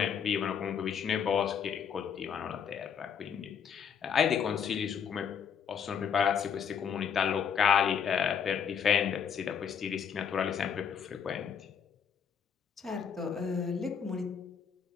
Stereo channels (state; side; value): quieter; right; 7.3 dB